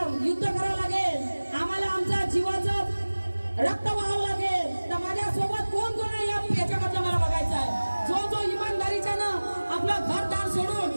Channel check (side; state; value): both; inverted; correlation -1.00